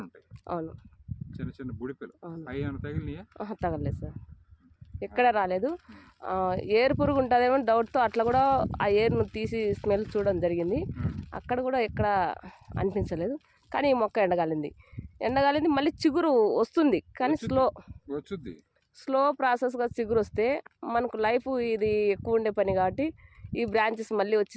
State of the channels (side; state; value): both; identical; correlation 1.00